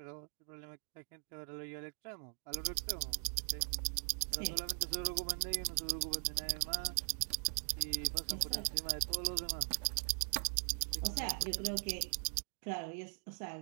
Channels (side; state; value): left; silent; digital silence